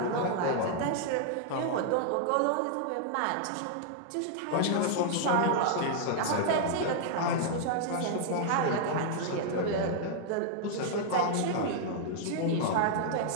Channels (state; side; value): different; both; correlation -0.01